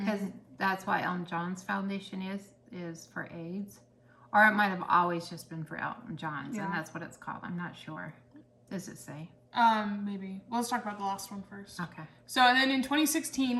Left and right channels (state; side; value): identical; both; correlation 1.00